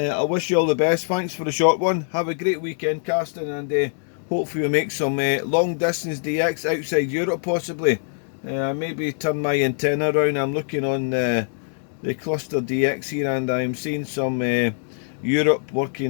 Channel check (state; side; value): silent; right; digital silence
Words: wish you all the best. Thanks for the short one. Have a great weekend, Carsten, and hopefully we'll make some long distance DX outside Europe possibly. Maybe turn my antenna around. I'm looking on the cluster DX here, and I'm seeing some Europe